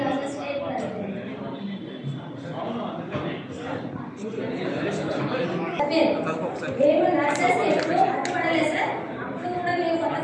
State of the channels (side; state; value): both; identical; correlation 1.00